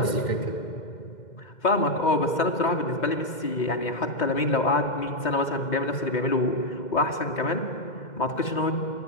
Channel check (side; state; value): right; late; 2.1 ms